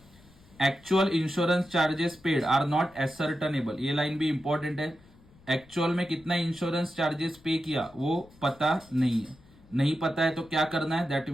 actual insurance charges paid are not ascertainable, ये लाइन भी इंपॉर्टेंट है. एक्चुअल में कितना इंश्योरेंस चार्जेस पे किया वो पता नहीं है. नहीं पता है तो क्या करना है, that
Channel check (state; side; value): noise; left; rumble, 26 dB below the sound